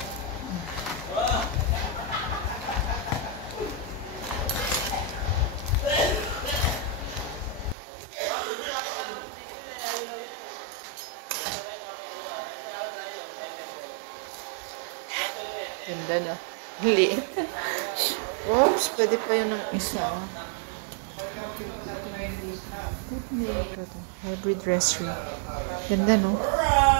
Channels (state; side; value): drops out; left; at 7.8 s